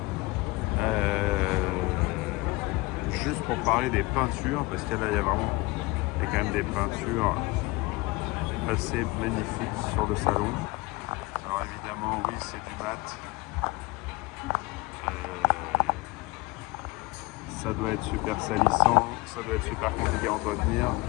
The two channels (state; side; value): quieter; right; 22.6 dB